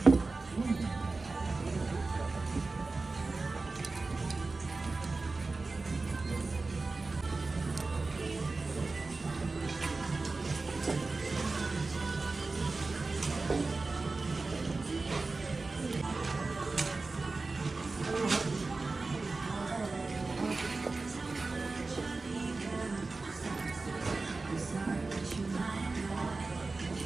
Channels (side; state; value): left; quieter; 3.6 dB